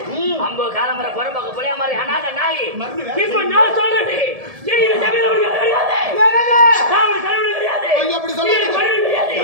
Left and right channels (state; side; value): late; left; 1.7 ms